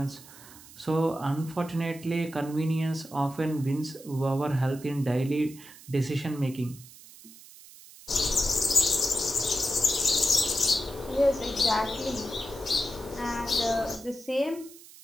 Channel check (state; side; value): noise; right; hiss, 19 dB below the sound